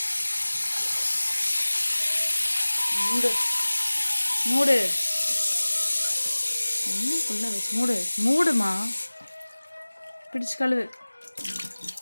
மூடு தண்ணிக்குள்ள வச்சு மூடுமா, பிடிச்சு கழுவு,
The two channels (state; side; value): inverted; both; correlation -1.00